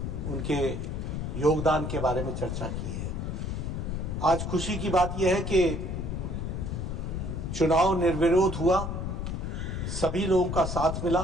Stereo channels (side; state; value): left; noise; rumble, 3 dB below the sound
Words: उनके योगदान के बारे में चर्चा की है। आज खुशी की बात यह है कि चुनाव निर्विरोध हुआ, सभी लोगों का साथ